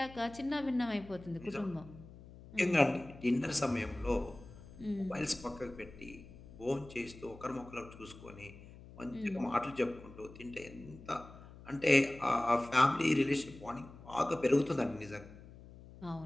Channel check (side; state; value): left; noise; hum, 18 dB below the sound